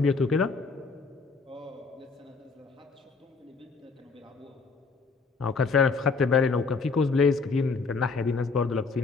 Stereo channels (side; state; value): right; quieter; 4.5 dB